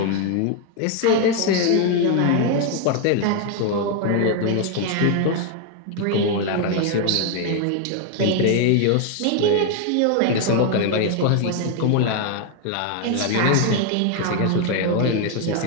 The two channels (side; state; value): both; different; correlation 0.01